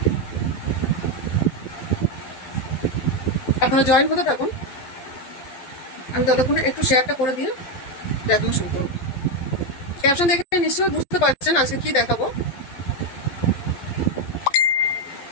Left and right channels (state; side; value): late; right; 12 ms